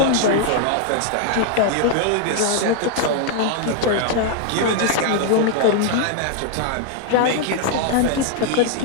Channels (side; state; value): both; different; correlation 0.00